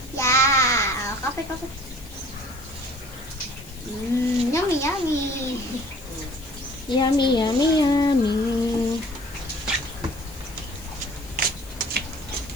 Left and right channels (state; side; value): noise; left; hiss, 20 dB below the sound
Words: Yeah. Kape, kape. Yummy, yummy. Yummy, yummy, yummy.